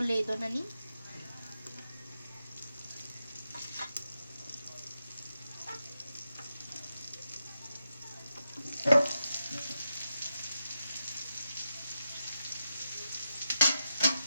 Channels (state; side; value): inverted; both; correlation -0.88